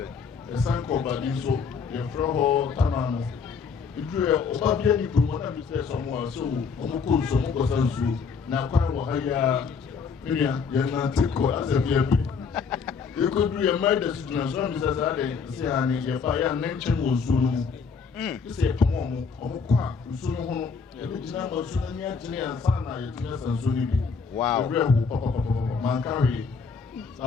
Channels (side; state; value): right; quieter; 5.5 dB